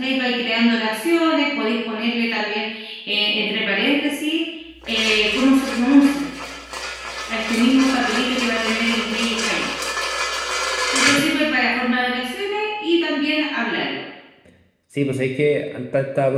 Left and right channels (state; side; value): identical; both; correlation 1.00